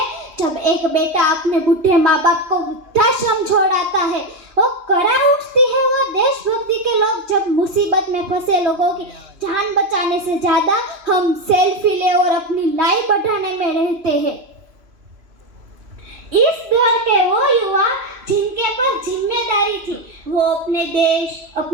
जब एक बेटा अपने बूढ़े माँ बाप को वृद्धाश्रम छोड़ाता है। वो करा उठती है वो देशभक्ति के लोग जब मुसीबत में फंसे लोगों की जान बचाने से ज्यादा हम सेल्फी ले और अपनी लाइफ बढ़ाने में रहते हैं। इस दौर के वो युवा जिनके पर जिम्मेदारी थी, वो अपने देश,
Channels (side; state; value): left; late; 2.8 ms